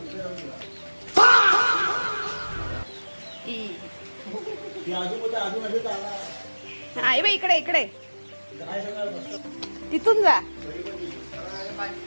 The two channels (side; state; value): both; inverted; correlation -1.00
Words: हा ये बाई इकडे इकडे तिथून जा.